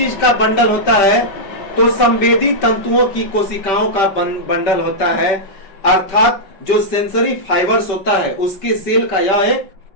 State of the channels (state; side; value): late; right; 5.1 ms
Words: का बंडल होता है? तो संवेदी तंतुओं की कोशिकाओं का बंडल होता है। अर्थात जो सेंसरी फाइबर्स होता है उसके सेल का यह एक